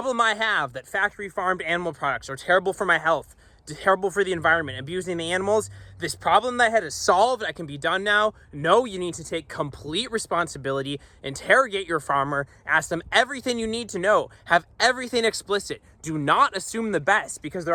I have that factory farmed animal products are terrible for my health, terrible for the environment, abusing the animals. This problem that I had is solved. I can be done now. No, you need to take complete responsibility, interrogate your farmer, ask them everything you need to know, have everything explicit. Do not assume the best, because there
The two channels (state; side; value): identical; both; correlation 1.00